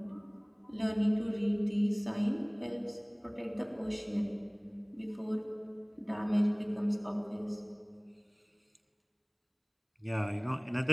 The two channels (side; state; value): both; identical; correlation 1.00